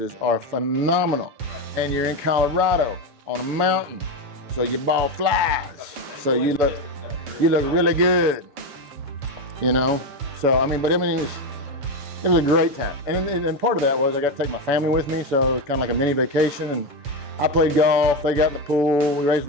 are phenomenal. And you're in Colorado on a mountain, so your ball flies. So you look really good, you know. So I mean, it was a great time. And part of that was I got to take my family with me, so it was kind of like a mini vacation. And I played golf. They got in the pool. We raised a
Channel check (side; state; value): left; late; 7.0 ms